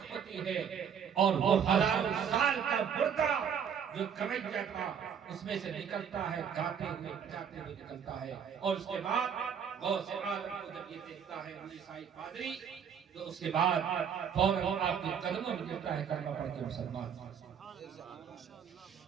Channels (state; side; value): quieter; left; 7.7 dB